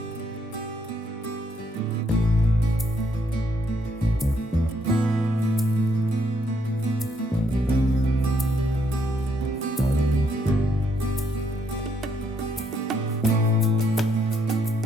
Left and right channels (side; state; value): both; normal; correlation 0.73